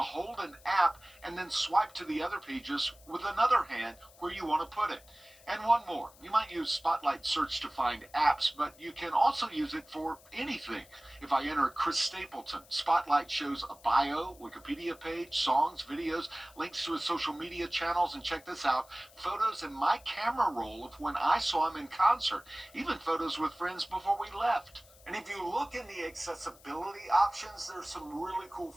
an app and then swipe to the other pages with another hand where you want to put it. And one more, you might use Spotlight Search to find apps, but you can also use it for anything. If I enter Chris Stapleton, Spotlight shows a bio, Wikipedia page, songs, videos, links to his social media channels, and check this out, photos in my camera roll of when I saw him in concert, even photos with friends before we left. And if you look in the accessibility options, there's some really cool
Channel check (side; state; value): left; noise; hiss, 25 dB below the sound